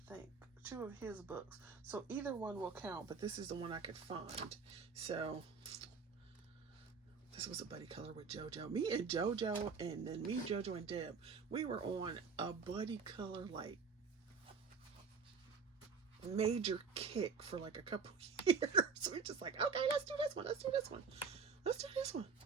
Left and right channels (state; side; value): quieter; left; 5.4 dB